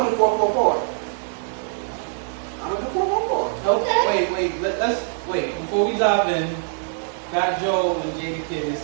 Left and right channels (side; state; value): left; silent; digital silence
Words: do 444. I'm gonna do 444. Okay. Wait, let's wait. Before we dive in, Fat Joe and Jada